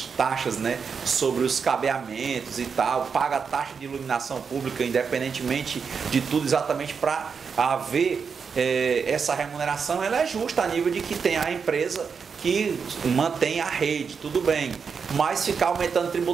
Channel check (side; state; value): left; quieter; 5.9 dB